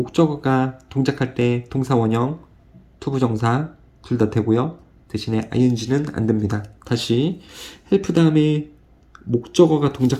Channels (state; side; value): identical; both; correlation 1.00